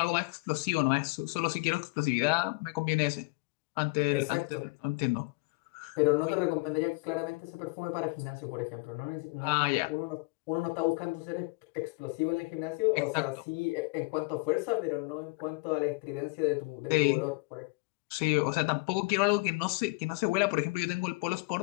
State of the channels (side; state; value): right; quieter; 27.6 dB